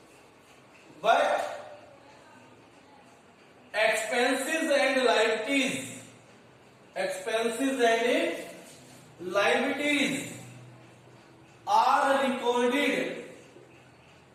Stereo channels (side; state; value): both; identical; correlation 1.00